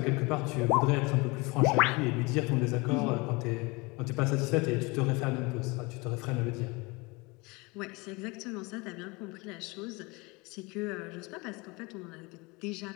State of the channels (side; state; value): right; quieter; 26.1 dB